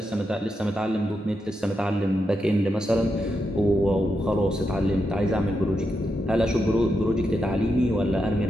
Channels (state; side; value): normal; both; correlation 0.85